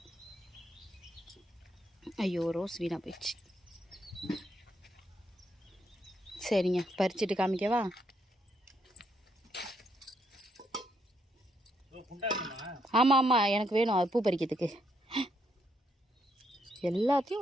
ஐயோ, ரோஸ் வீணாக போயிடுச்சு. சரிங்க, பறிச்சுட்டு காமிக்கவா? ஆமாம் ஆமாம், எனக்கு வேணும் அது பூ பறிக்கிறதுக்கு.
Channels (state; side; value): normal; both; correlation 0.75